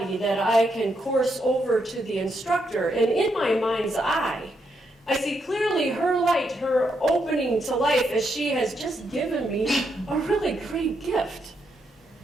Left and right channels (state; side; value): normal; both; correlation 0.79